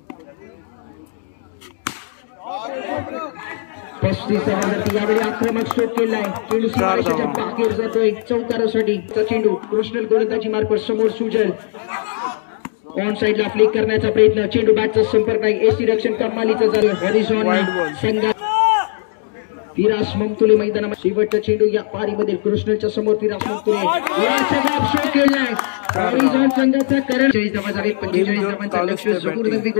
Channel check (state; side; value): silent; right; digital silence